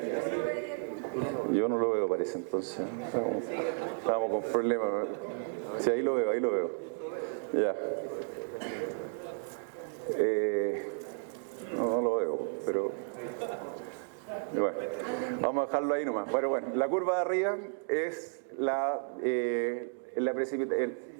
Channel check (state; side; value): silent; left; 56 dB below the other